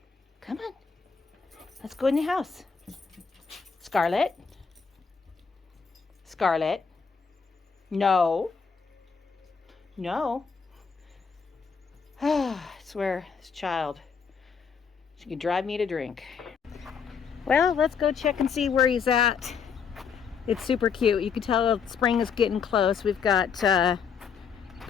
Come on. Let's go in the house. Scarlett. Scarlett. No. No. I swear, this child. She could drive me to drink. Well, let's go check and see where he's at. It's super cute. You can tell spring is getting close. We've got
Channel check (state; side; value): quieter; right; 6.2 dB